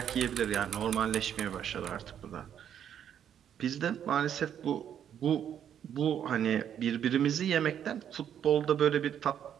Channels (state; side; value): quieter; left; 9.3 dB